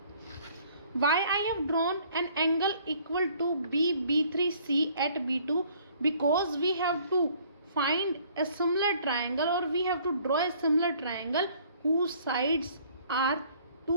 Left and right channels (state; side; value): inverted; both; correlation -0.58